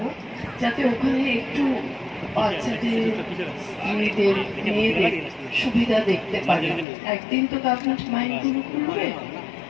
যাতে ওখানে একটু বাচ্চাদের, মেয়েদের সুবিধা দেখতে পারে। একদিন তো গভর্নমেন্ট মাইন্ডগুলো খুলবে,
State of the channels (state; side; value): drops out; right; at 6.9 s